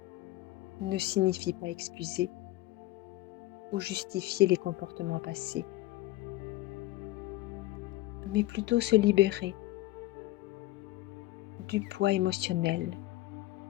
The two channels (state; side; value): quieter; right; 17.1 dB